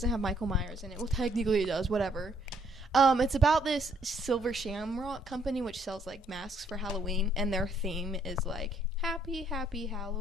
have Michael Myers in it. Well, technically it does, whatever. It's about this Silver Shamrock company which sells, like, masks for Halloween. And their theme is, like, happy, happy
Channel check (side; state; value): both; normal; correlation 0.68